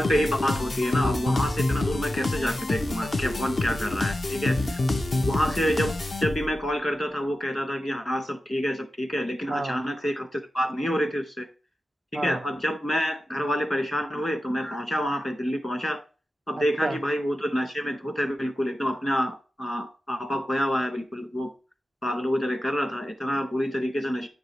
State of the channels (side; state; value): both; normal; correlation 0.92